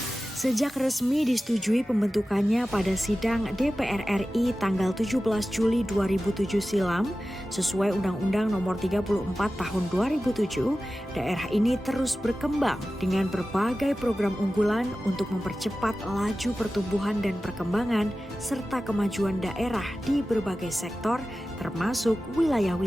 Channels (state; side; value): normal; both; correlation 0.95